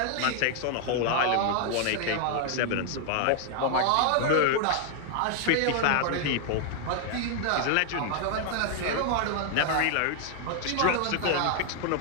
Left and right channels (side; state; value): both; different; correlation 0.00